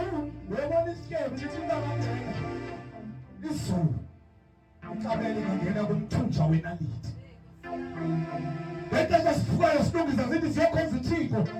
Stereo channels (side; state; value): both; identical; correlation 1.00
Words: Uyabona isityebi lithi ingangena izulu, ikameni ingangena kumthunja wenaliti. Lento sesifukayo silungisa zithi siyokhonza uThixo,